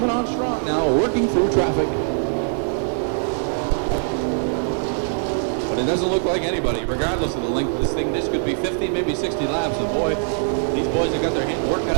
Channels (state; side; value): silent; left; 64 dB below the other